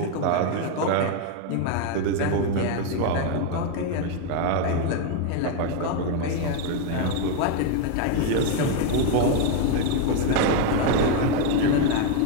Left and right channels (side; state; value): both; different; correlation 0.01